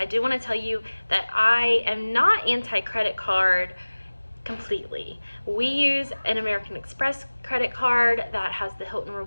do want to tell you that I am not anti-credit card completely. We use an American Express credit card that has the Hilton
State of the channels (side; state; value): both; inverted; correlation -1.00